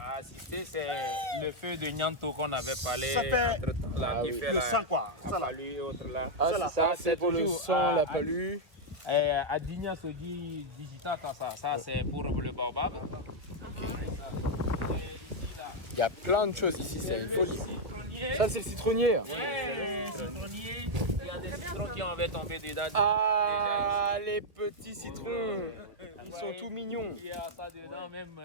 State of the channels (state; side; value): late; left; 1.8 ms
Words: assisté, c'est le feu de Nyanto qu'on avait parlé Ça fait entre-temps, là, Ah qui oui. fait Le la- sang, quoi. Ça la là. palue et autres là. Ah, Ça, là. ça, c'est pour le toujours sang, la à- palue. À Digna se dit digital, ça c'est pour le baobab. Il y a plein de choses ici, c'est une folie. Ça, c'est le citronnier. Citronnier, il y a des citrons qui avaient tombé dedans. Ah, les petits citrons. Ils sont tout mignons. Il y a ça dedans même